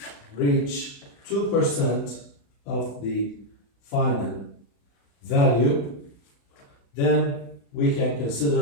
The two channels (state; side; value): late; right; 35 ms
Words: reach 2% of the final value, then we can